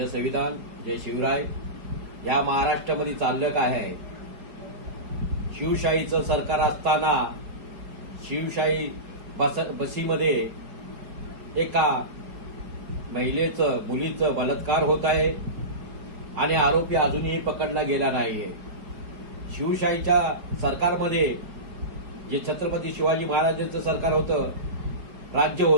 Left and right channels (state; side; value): late; left; 4.6 ms